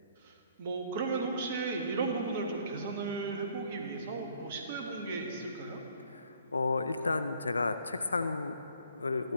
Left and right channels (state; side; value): inverted; both; correlation -0.61